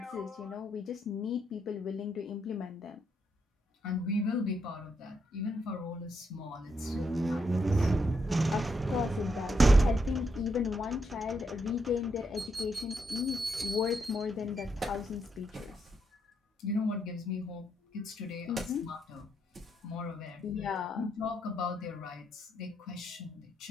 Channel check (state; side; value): normal; both; correlation 0.78